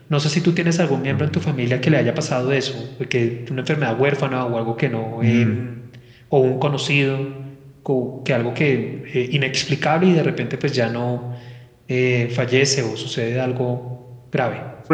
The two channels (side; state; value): both; identical; correlation 1.00